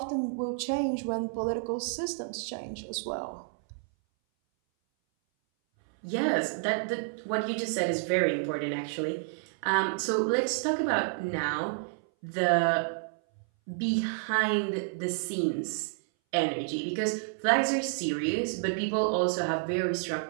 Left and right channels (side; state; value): left; silent; 58 dB below the other